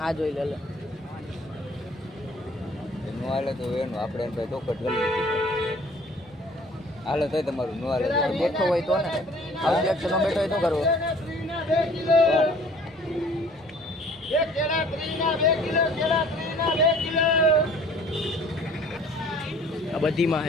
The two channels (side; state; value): both; normal; correlation 0.53